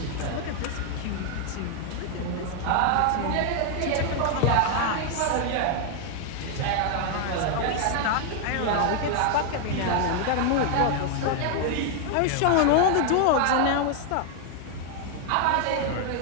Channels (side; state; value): both; different; correlation 0.00